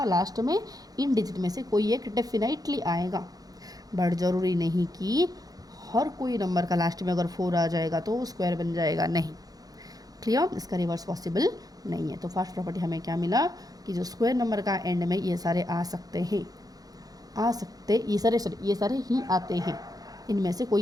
लास्ट में इन डिजिट में से कोई एक डेफिनेटली आएगा, बट ज़रूरी नहीं कि हर कोई नंबर का लास्ट में अगर 4 आ जाएगा तो वो स्क्वायर बन जाएगा, नहीं। क्लियर, इसका रिवर्स पॉसिबल नहीं है। तो फर्स्ट प्रॉपर्टी हमें क्या मिला कि जो स्क्वायर नंबर का एंड में ये सारे आ सकते हैं, ये सारे ही आते हैं, इनमें से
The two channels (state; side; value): late; left; 0.18 ms